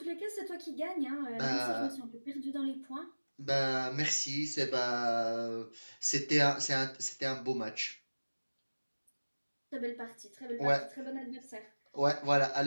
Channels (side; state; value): both; inverted; correlation -1.00